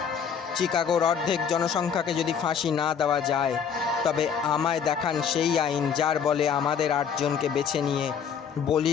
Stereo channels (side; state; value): right; quieter; 7.3 dB